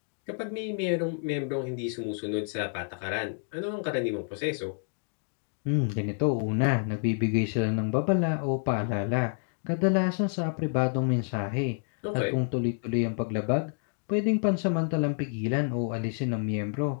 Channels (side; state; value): right; silent; 59 dB below the other